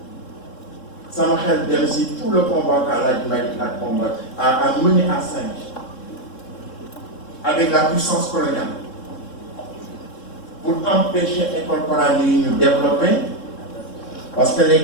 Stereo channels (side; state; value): right; late; 3.7 ms